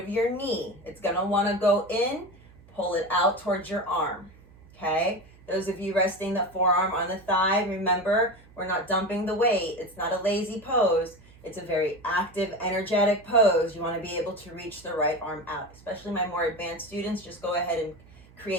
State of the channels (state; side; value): noise; right; hum, 25 dB below the sound